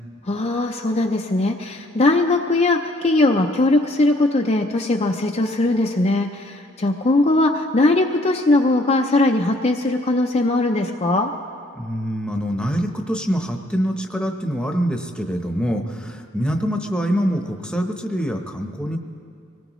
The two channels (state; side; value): normal; both; correlation 0.65